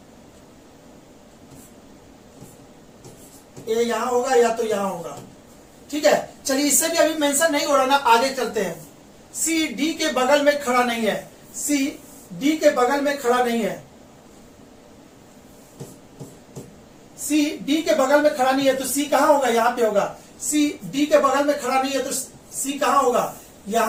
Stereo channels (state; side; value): identical; both; correlation 1.00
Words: ए यहां होगा या तो यहां होगा। ठीक है, चलिए इससे भी अभी मेंशन नहीं हो रहा ना, आगे चलते हैं। सी डी के बगल में खड़ा नहीं है, सी डी के बगल में खड़ा नहीं है, सी डी के बगल में खड़ा नहीं है, तो सी कहां होगा? यहां पे होगा। सी डी के बगल में खड़ा नहीं है तो सी कहां होगा?